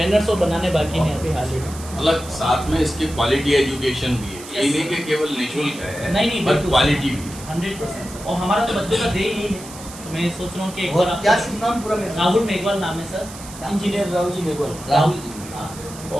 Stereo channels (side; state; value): right; noise; hiss, 15 dB below the sound